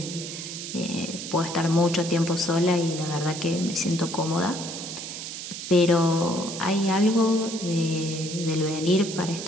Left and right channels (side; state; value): right; noise; hiss, 8 dB below the sound